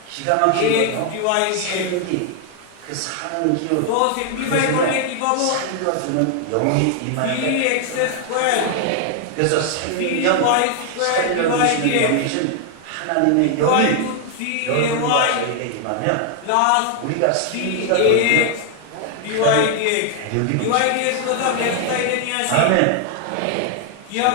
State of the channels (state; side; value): different; both; correlation 0.00